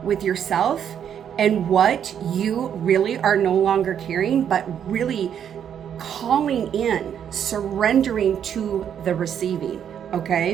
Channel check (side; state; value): left; quieter; 8.8 dB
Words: with yourself and what you really are no longer carrying, but really calling in, surrendering to the receiving,